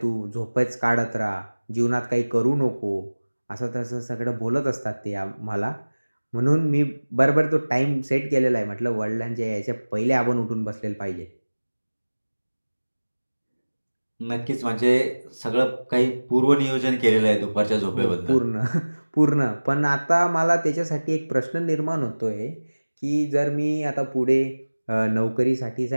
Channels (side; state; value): both; inverted; correlation -1.00